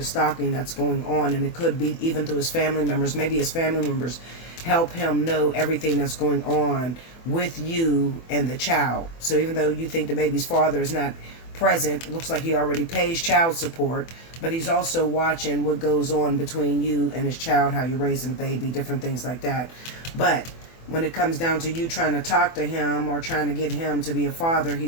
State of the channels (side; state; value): right; late; 24 ms